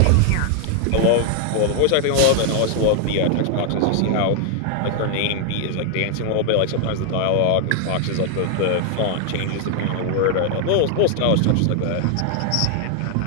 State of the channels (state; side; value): different; both; correlation 0.00